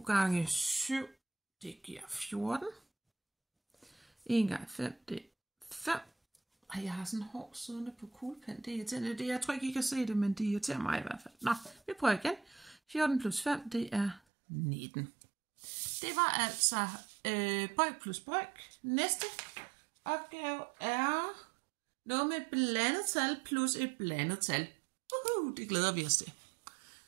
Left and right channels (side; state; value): left; drops out; at 14.2 s